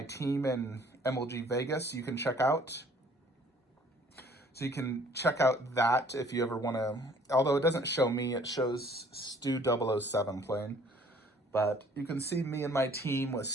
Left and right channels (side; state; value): both; normal; correlation 0.56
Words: team in MLG Vegas you can check out. So you can check out that if you ever want to, although it doesn't show me, it shows Stu007 playing. But you can see me and my team with